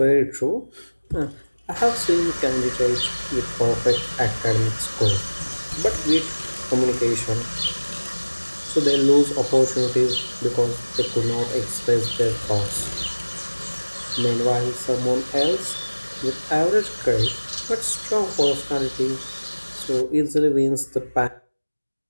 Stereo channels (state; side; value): inverted; both; correlation -1.00